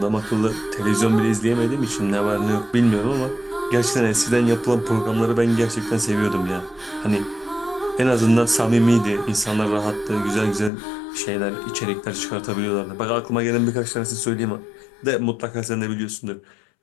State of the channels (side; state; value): right; drops out; at 10.7 s